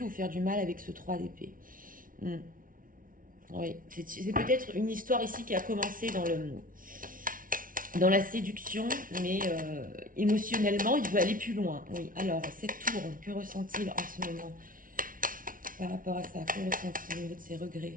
faire du mal avec ce 3 d'épée. Oui, c'est peut-être une histoire ici qui a commencé dans la séduction, mais émotionnellement, il veut aller plus loin. Oui, alors, cette tour, que ressent-il en ce moment par rapport à ça? Que ressent-il au niveau de ses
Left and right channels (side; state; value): left; late; 0.40 ms